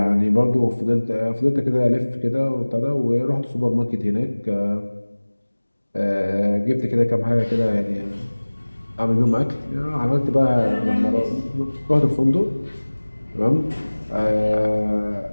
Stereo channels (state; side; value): inverted; both; correlation -1.00